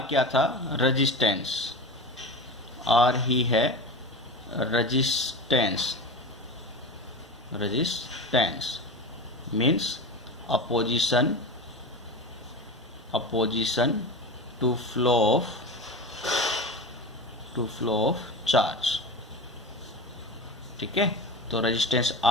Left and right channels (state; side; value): normal; both; correlation 0.28